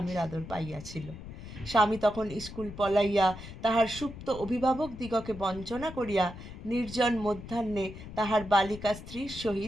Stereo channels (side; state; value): left; noise; rumble, 13 dB below the sound